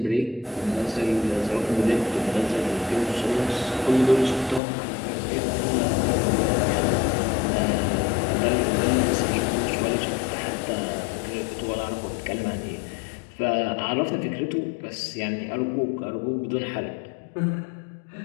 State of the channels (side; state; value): right; drops out; at 4.6 s